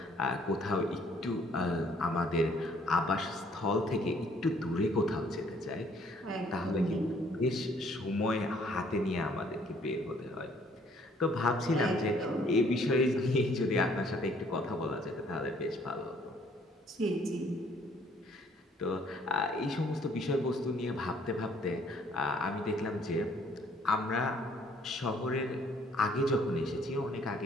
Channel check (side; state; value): both; normal; correlation 0.62